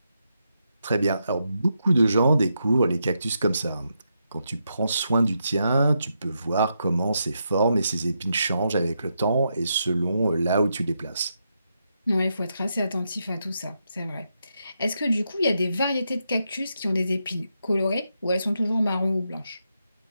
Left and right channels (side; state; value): both; inverted; correlation -0.83